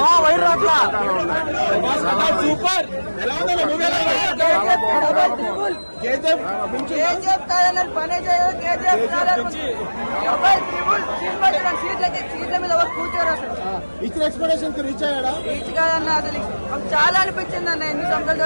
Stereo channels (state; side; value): inverted; both; correlation -1.00